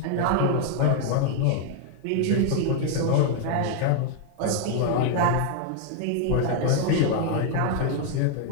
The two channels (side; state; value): both; different; correlation 0.00